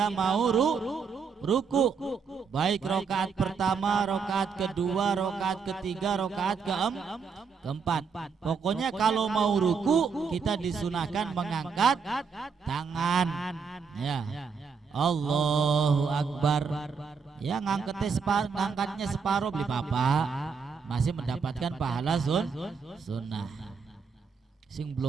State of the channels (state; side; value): quieter; left; 5.6 dB